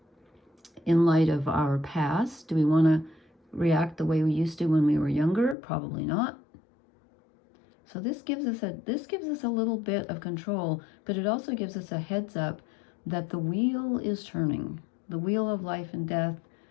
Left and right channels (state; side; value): drops out; right; at 5.6 s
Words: In light of our past, do we want to react the way we used to when we were younger? Probably not. So this gives us a little bit of control, but it also gives us a heads up that the wheel is turning. The wheel of life and death,